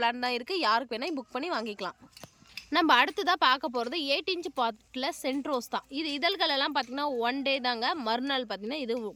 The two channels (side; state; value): both; identical; correlation 1.00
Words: தான் இருக்குது. யாருக்கு வேணால் புக் பண்ணி வாங்கிக்கலாம். நம்ம அடுத்ததாக பார்க்க போகிறது 8 இன்ச்சு பாட்டில் சென்ட் ரோஸ் தான். இது இதழ்களெல்லாம் பார்த்திங்கன்னா 1 டே தாங்க, மறுநாள் பார்த்திங்கன்னா இது